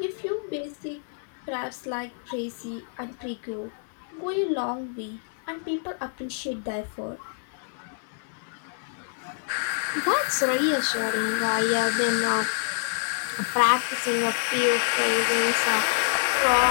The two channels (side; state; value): right; silent; 58 dB below the other